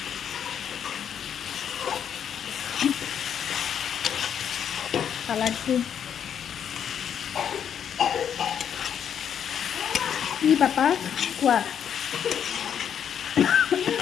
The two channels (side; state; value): right; quieter; 8.6 dB